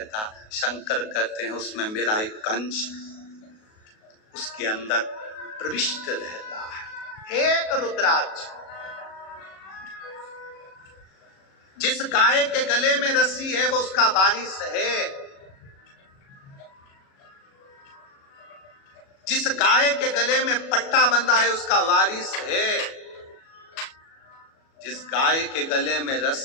शंकर कहते हैं उसमें मेरा एक अंश उसके अंदर प्रविष्ट रहता है। एक रुद्राक्ष, जिस गाय के गले में रस्सी है वो उसका वारिस है। जिस गाय के गले में पट्टा बंधा है उसका वारिस है। जिस गाय के गले में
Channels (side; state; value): right; late; 37 ms